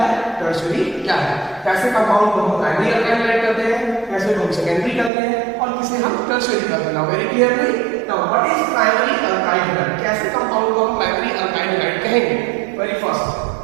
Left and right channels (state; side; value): drops out; left; at 5.1 s